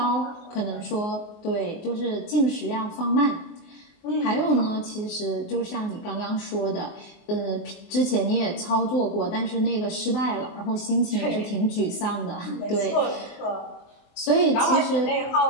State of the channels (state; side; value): late; right; 24 ms